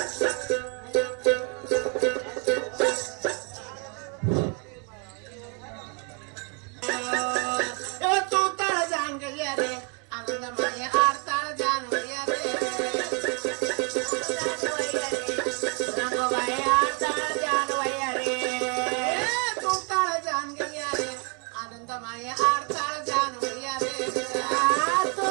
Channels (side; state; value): left; quieter; 35.1 dB